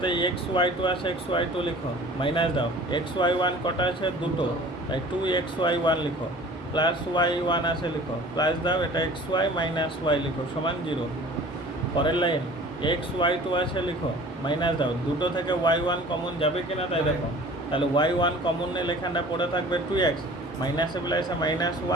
এক্স ওয়াই টু আছে, এক্স ওয়াই টু লিখো, মাইনাস দাও, এক্স ওয়াই ওয়ান কটা আছে? দুটো, তাই 2xy1 লিখো, প্লাস y1 আছে লিখো, প্লাস দাও, এটা xy মাইনাস y লিখো সমান 0। পরের লাইন xy2 আছে লিখো, মাইনাস দাও, দুটো থেকে y1 কমন যাবে কিনা তাই দেখো, তাহলে y1 কমন নিলে এখানটা পড়ে থাকবে 2x, মাইনাসে প্লাসে মাইনাস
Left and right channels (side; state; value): both; normal; correlation 0.46